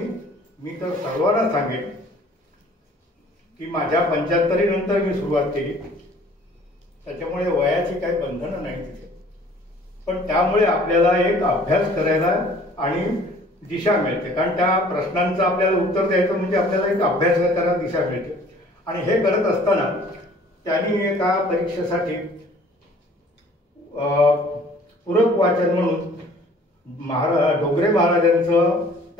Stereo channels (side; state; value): both; normal; correlation 0.53